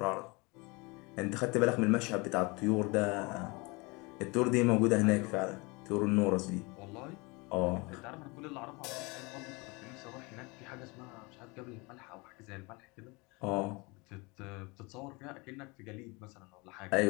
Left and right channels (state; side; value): quieter; right; 27.0 dB